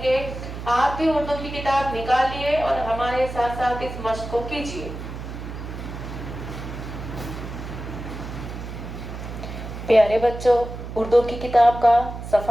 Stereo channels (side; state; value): right; noise; hum, 9 dB below the sound